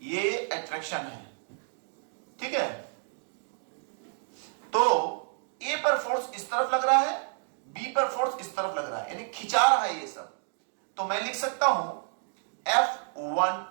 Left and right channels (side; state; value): left; silent; 58 dB below the other